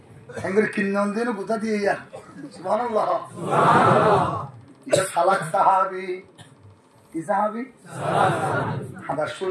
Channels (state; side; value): identical; both; correlation 1.00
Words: এঙ্গের কিন্নন দিন গুতা দিয়ে ইয়া সুবহানাল্লাহ সুবহানাল্লাহ এটা সালাক সাহাবী কি সাহাবী হাতা